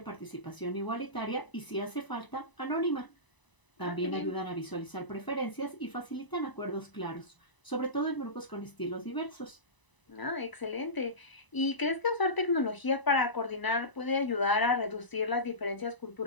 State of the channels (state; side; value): late; right; 1.0 ms